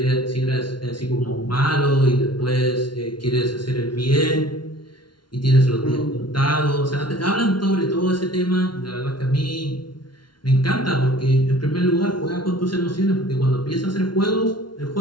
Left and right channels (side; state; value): right; late; 0.71 ms